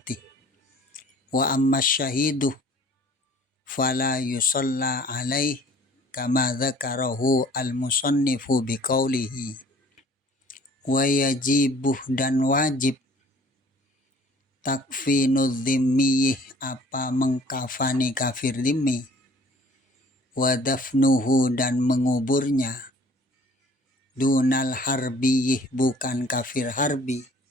Wa amma syahidu fala yusalla alaih kama dzakarahu al-musannifu biqaulihi. Wa yajibuh dan wajib takfinu dhimmi apa mengkafani kafir dhimmi, wa dafnuhu dan menguburnya, dunal harbi bukan kafir harbi,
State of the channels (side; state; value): both; normal; correlation 0.53